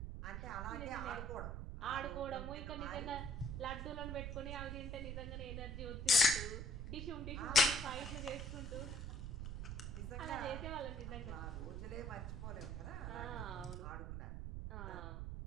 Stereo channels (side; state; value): right; noise; rumble, 5 dB below the sound